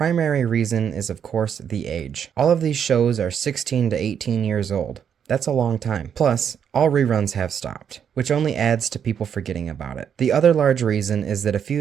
reason is of course the age. All of these shows are 16 to 18 years old. That's a long time. Plus, all reruns have stopped, which only adds to people forgetting about it. The other large reason is that a few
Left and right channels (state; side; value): quieter; left; 8.1 dB